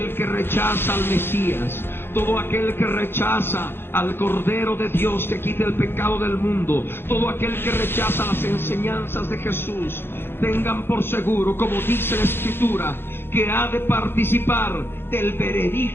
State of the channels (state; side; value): late; right; 0.11 ms